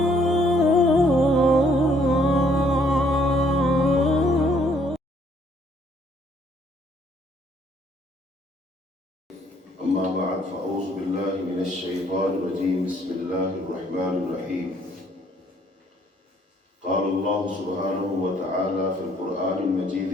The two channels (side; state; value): both; normal; correlation 0.65